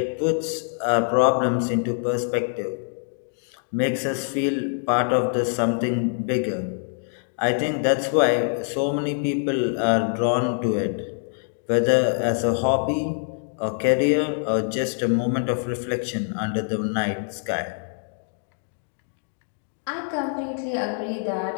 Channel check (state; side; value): silent; right; digital silence